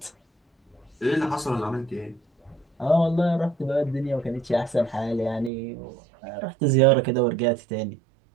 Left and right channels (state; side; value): drops out; left; at 5.5 s